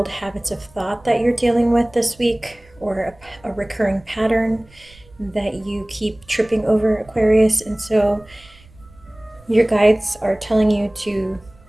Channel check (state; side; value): noise; right; rumble, 26 dB below the sound